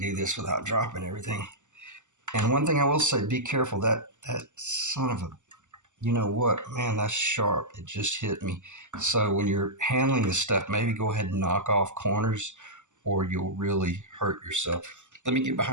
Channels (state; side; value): late; left; 0.84 ms